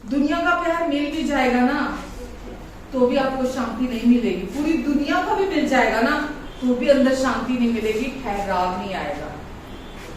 दुनिया का प्यार मिल भी जाएगा ना तो भी आपको शांति नहीं मिलेगी। पूरी दुनिया का भी मिल जाएगा ना तो भी अंदर शांति नहीं मिलेगी, ठहराव नहीं आएगा।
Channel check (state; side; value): identical; both; correlation 1.00